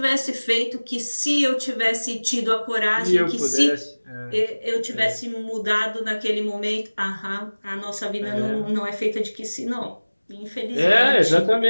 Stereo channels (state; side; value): inverted; both; correlation -1.00